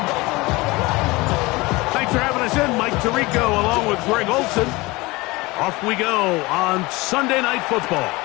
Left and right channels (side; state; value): right; quieter; 22.5 dB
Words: Tirico along with Greg Olson. Off we go on Sunday Night Football.